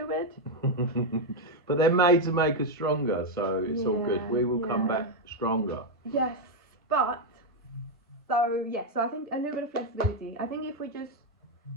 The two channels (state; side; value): normal; both; correlation 0.02